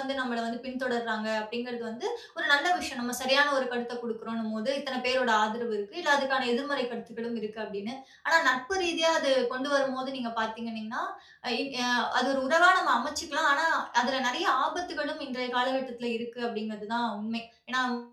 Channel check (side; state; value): both; identical; correlation 1.00